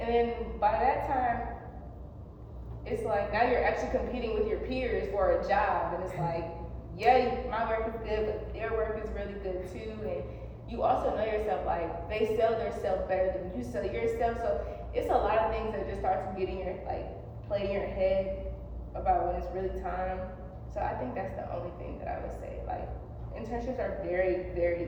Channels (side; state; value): both; identical; correlation 1.00